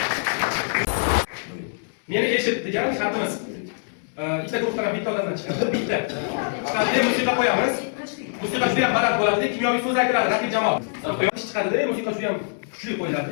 Meni eshit degan shartimiz. Ikkita guruhdan bitta odamdan chiqadi. Bitta. Chiqadi, musiqa qo'yamiz. Musiqa juda ham baland bo'ladi, kimyoviy so'z aytiladi raqib jamoa. Quyosh chiqadi-da, musiqa juda ham kuchli qo'yiladi.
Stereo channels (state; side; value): silent; right; 63 dB below the other